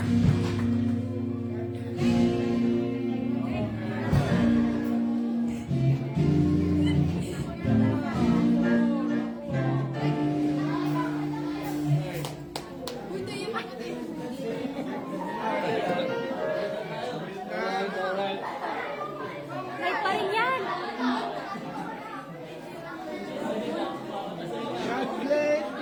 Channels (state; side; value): identical; both; correlation 1.00